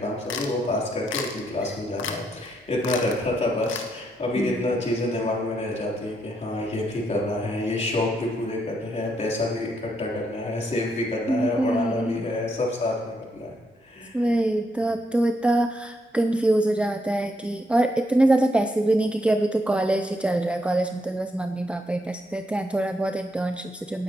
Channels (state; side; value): normal; both; correlation 0.77